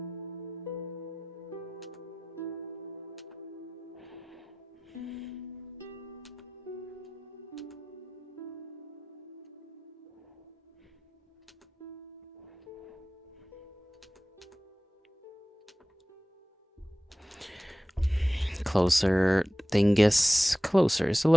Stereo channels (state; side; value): normal; both; correlation 0.96